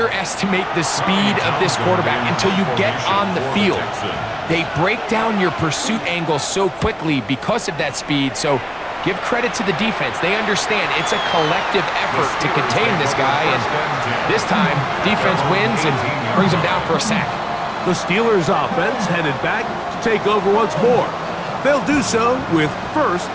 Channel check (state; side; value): identical; both; correlation 1.00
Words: the speed of this quarterback until you get on the field. They break down your pursuit angle so quickly because of that speed, so give credit to the defense. They understand it's a collective effort to contain this guy, and this time, defense wins and brings him down for a sack. The Steelers' offense headed back to take over once more. They'll do so with 1st